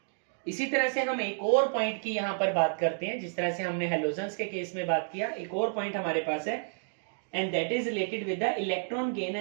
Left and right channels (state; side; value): silent; left; digital silence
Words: इसी तरह से हम एक और पॉइंट की यहां पर बात करते हैं, जिस तरह से हमने हेलोजन्स के केस में बात किया, एक और पॉइंट हमारे पास है, and that is related with the electron gain